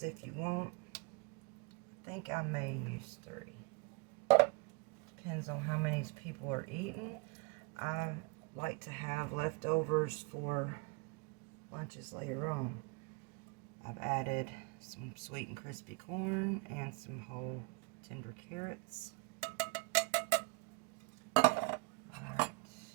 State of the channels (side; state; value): left; quieter; 30.9 dB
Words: if you want. I think I may use 3. Depends on how many people are eating. I like to have leftovers for lunches later on. I've added some sweet and crispy corn and some whole tender carrots. Alright,